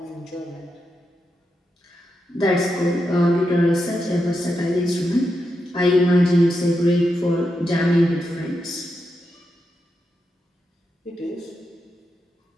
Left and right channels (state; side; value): normal; both; correlation 0.86